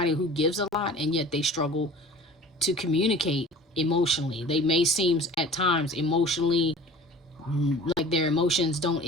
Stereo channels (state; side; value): normal; both; correlation 0.43